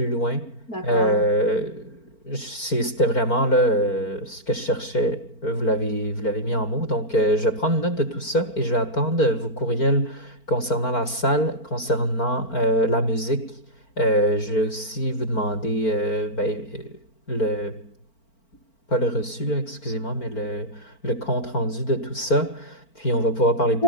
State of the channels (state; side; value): late; right; 4.4 ms